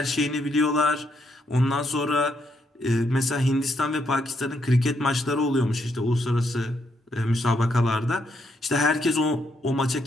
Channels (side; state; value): both; normal; correlation 0.76